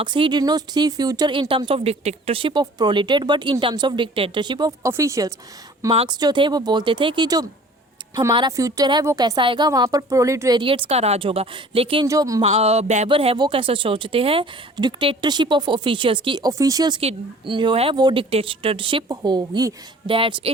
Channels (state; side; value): normal; both; correlation 0.48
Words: he did not see future in terms of dictatorship of proletariat but in terms of dictatorship of officials. Marx जो थे वो बोलते थे कि जो हमारा फ्यूचर है वो कैसा आएगा, वहाँ पर प्रोलेटेरिएट्स का राज होगा। लेकिन जो बेबर है वो कैसा सोचते हैं, डिक्टेटरशिप ऑफ ऑफिशियल्स की, ऑफिशियल्स की जो है वो डिक्टेटरशिप होगी। That's